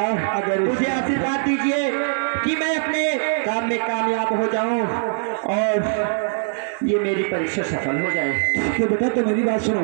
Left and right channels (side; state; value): left; silent; digital silence